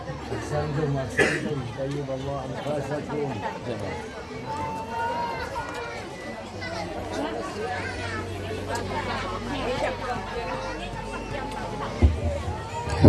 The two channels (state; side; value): identical; both; correlation 1.00